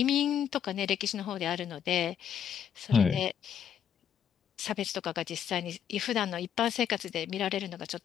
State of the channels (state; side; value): quieter; right; 8.7 dB